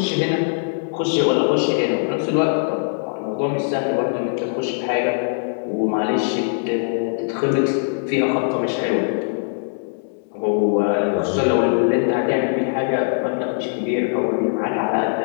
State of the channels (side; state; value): right; silent; digital silence